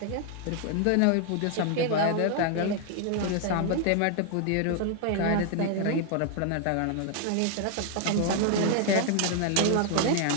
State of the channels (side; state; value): both; different; correlation 0.00